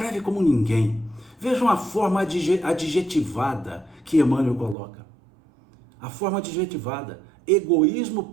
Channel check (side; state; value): left; drops out; at 4.8 s